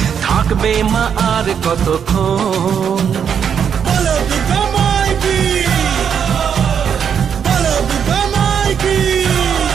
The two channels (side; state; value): left; quieter; 7.7 dB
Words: থাকবে মা আর কতক্ষণ। বলো দুর্গা মাই কি, বলো দুর্গা মাই কি,